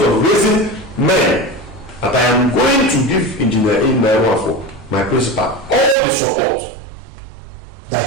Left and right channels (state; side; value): drops out; left; at 6.0 s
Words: of raising men, that I am going to give Engineer Wafo, my principal, all the support that